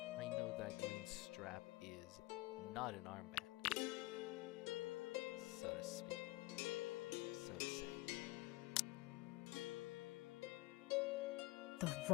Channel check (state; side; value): quieter; right; 20.9 dB